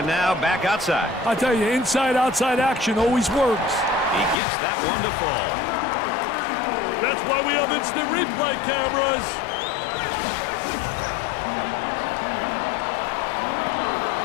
now back outside. I tell you, inside-outside action always works. He gets that one to fall. That's why we have instant replay cameras.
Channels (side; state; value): right; drops out; at 4.4 s